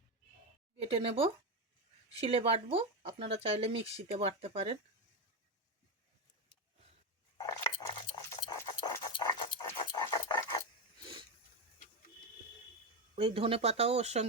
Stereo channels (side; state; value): both; normal; correlation 0.10